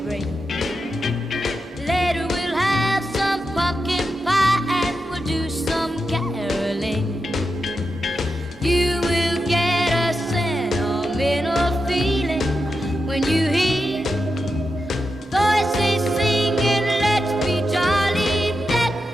ring. Later we'll have some pumpkin pie and we'll do some caroling. You will get a sentimental feeling when you hear voices singing, let's be jolly, deck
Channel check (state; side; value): normal; both; correlation 0.88